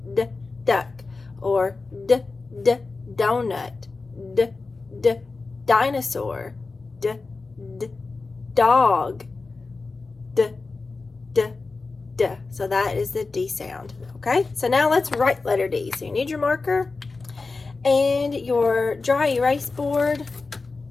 duck, or donut, dinosaur, dog, so that is the D sound. Okay, so now let's write letter D. So you need your marker and your dry erase board,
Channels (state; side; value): quieter; right; 3.9 dB